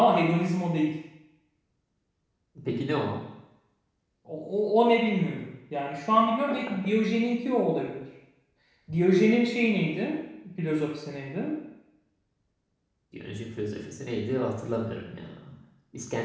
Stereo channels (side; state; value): both; identical; correlation 1.00